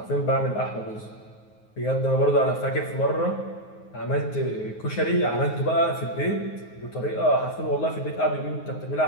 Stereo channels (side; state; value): right; late; 9.5 ms